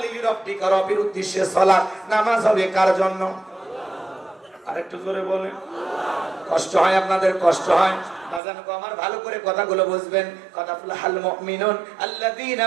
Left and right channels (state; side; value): drops out; left; at 8.4 s